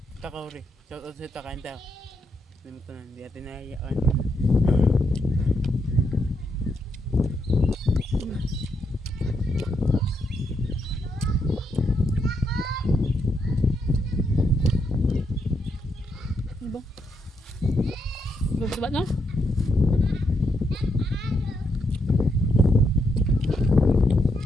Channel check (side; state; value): both; normal; correlation 0.79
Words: Takauri. Shout out sa Takain tayo. Hindi mo ito na, hindi natin nahihiyaan. Ano ba? Gusto ba no?